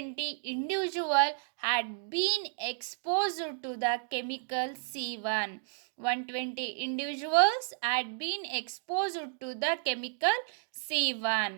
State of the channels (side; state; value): left; silent; digital silence